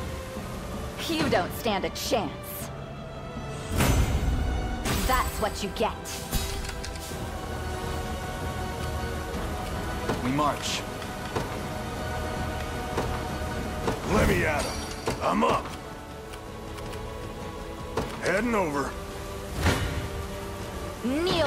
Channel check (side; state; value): both; identical; correlation 1.00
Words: You don't stand a chance. That's what you get. We march. Let me at him. I'm up. Heading over.